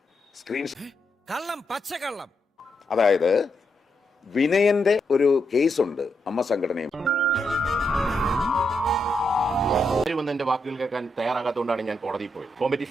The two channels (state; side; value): normal; both; correlation 0.82